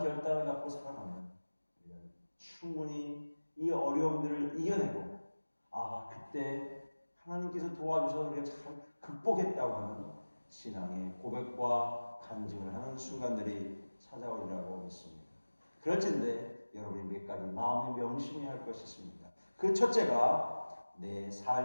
결단을 갖고 살아가면 우리는 충분히 이 어려움들을 이겨내고 그때 하나님께서 도와주셔서 우리가 잘 극복했다고 하는 신앙의 고백과 간증을 하는 순간들이 찾아오리라고 믿습니다. 그렇지만 여러분이 몇 가지 마음에 명심해야 할 것이 있습니다. 그 첫째가 내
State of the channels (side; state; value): both; inverted; correlation -1.00